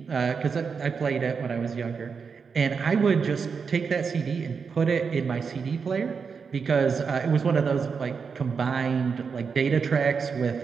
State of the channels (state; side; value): quieter; left; 5.7 dB